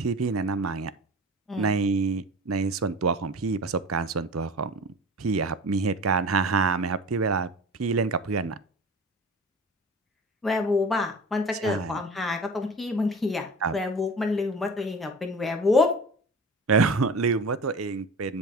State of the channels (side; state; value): both; normal; correlation 0.36